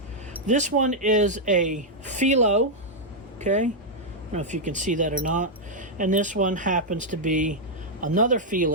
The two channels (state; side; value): normal; both; correlation -0.04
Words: This one is a Filo. Okay? I don't know if you can see that or not. And this one happens to be another